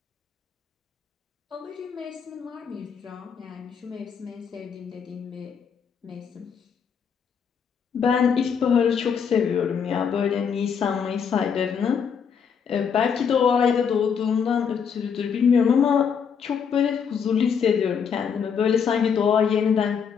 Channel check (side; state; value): right; quieter; 6.9 dB